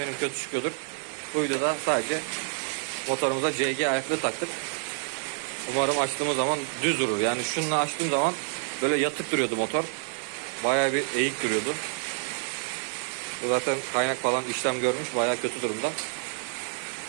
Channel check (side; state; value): left; silent; digital silence